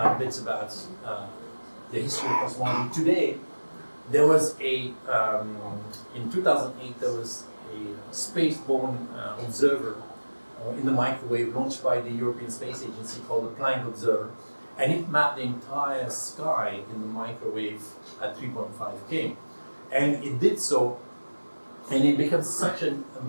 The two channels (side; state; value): both; inverted; correlation -1.00